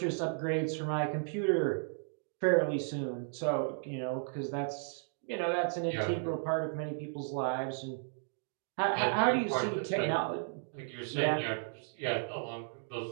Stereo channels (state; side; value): silent; left; digital silence